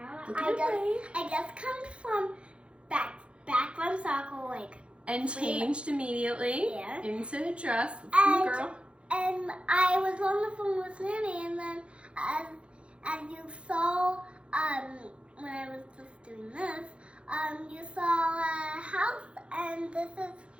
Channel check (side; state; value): left; late; 0.059 ms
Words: Look at I just come from back from soccer, like. And changed immediately into a dress. And, girl. And I was on the phone with Nanny, and then as you saw, when I was just doing this, you saw a house, and this is